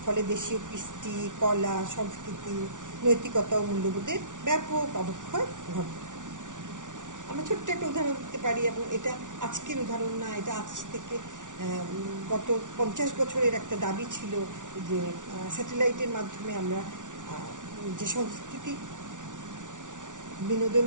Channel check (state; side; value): late; left; 0.87 ms